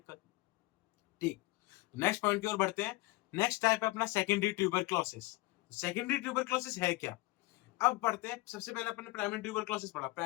ठीक, नेक्स्ट पॉइंट की ओर बढ़ते हैं। नेक्स्ट टाइप है अपना सेकेंडरी ट्यूबरक्लोसिस। सेकेंडरी ट्यूबरक्लोसिस है क्या, अब पढ़ते हैं। सबसे पहले अपने प्राइमरी ट्यूबरक्लोसिस पढ़ा,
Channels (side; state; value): right; quieter; 21.1 dB